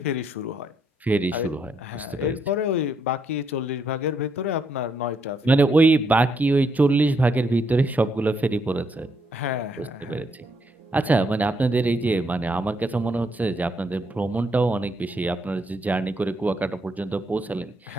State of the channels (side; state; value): both; normal; correlation 0.75